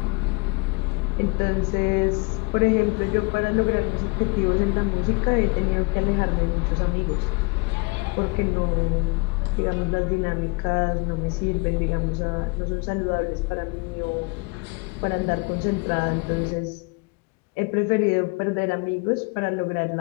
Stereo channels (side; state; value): right; quieter; 29.3 dB